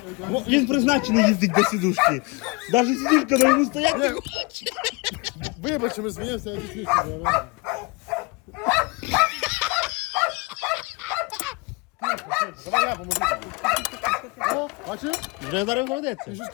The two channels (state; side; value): quieter; right; 27.7 dB